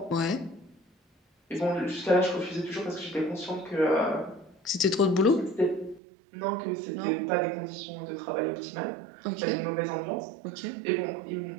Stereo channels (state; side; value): drops out; left; at 6.0 s